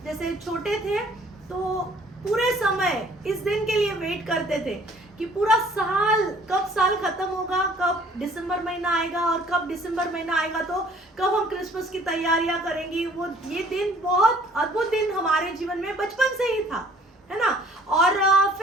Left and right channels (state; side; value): normal; both; correlation 0.56